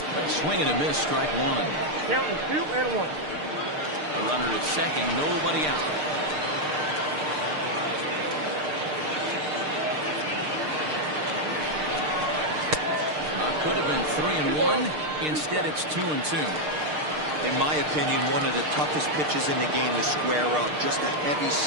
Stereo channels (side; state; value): left; late; 6.6 ms